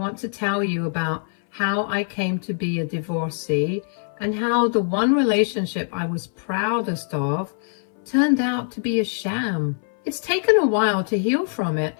to tell you about how I came to be a divorcee and how the one relationship I was proudest of turned out to be a sham. It's taken a while to heal from it,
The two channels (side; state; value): right; silent; 59 dB below the other